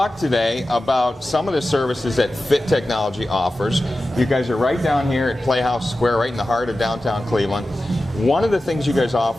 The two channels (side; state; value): both; normal; correlation 0.94